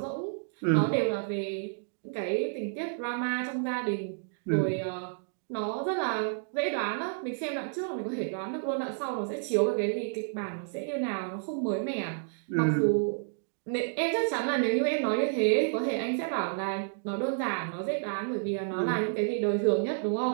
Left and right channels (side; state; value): left; silent; digital silence